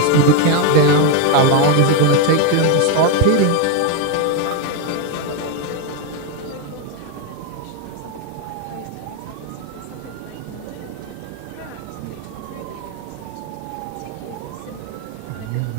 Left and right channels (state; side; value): different; both; correlation 0.01